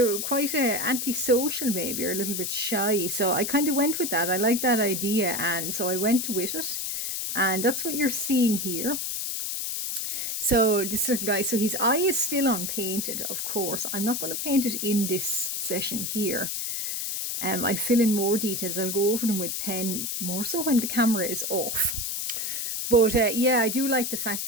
were quite antisocial maybe, or a little bit shy. So I kind of went with that. I like that idea, and so I went with it. And that's what you're seeing here. So this little guy, so his eye is still unpainted, of course. I'm not going to paint it in this session here. I'll fill in more details. I'll go over them with pen, more so when the camera is off. But yeah, I do like the fact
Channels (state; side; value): noise; left; hiss, 2 dB below the sound